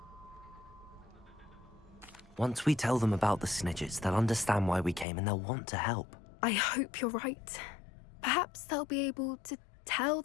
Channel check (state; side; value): drops out; right; at 5.1 s